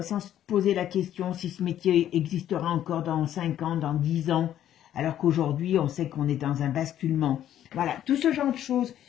se poser la question si ce métier existera encore dans 5 ans, dans 10 ans, alors qu'aujourd'hui, on sait qu'on est dans un basculement. Voilà, tout ce genre de choses,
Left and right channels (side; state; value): right; quieter; 11.3 dB